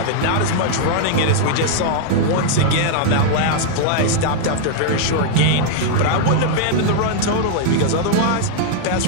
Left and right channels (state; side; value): different; both; correlation -0.01